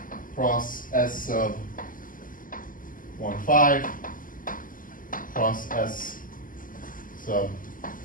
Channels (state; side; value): late; right; 0.40 ms